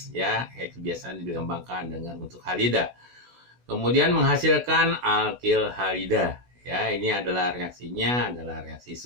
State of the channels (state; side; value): late; left; 16 ms